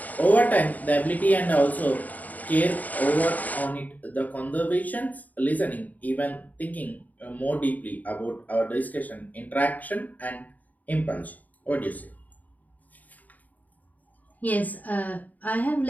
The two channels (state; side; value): late; right; 0.078 ms